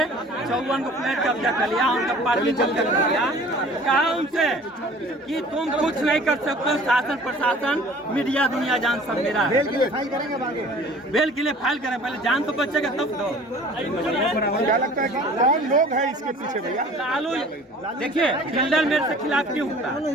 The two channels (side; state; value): both; normal; correlation 0.48